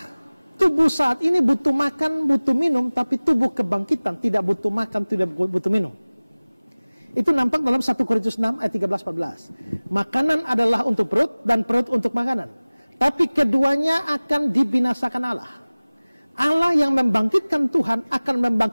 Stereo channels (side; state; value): both; inverted; correlation -1.00